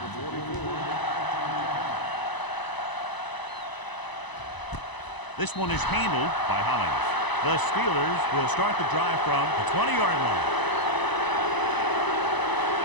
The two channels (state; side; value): late; right; 1.0 ms